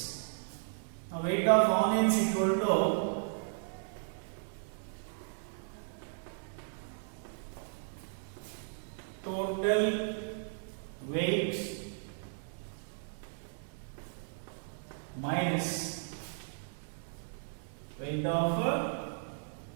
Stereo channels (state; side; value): silent; left; 54 dB below the other